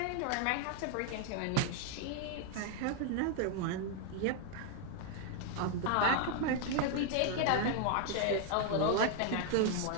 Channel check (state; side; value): different; both; correlation 0.00